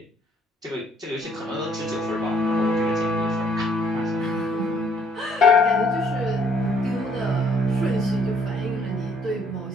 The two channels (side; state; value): both; normal; correlation 0.64